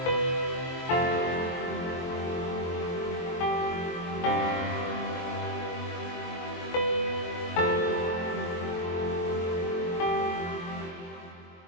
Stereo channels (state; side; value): late; right; 23 ms